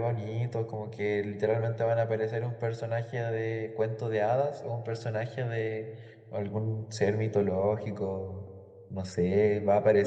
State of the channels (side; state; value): both; identical; correlation 1.00